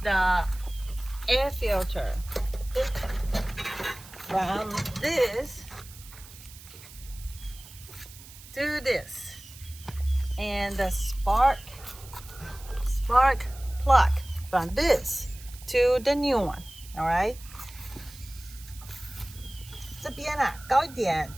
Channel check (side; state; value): right; noise; hiss, 18 dB below the sound